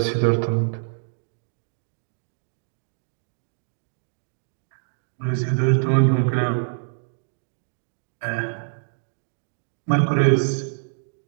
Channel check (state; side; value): silent; left; digital silence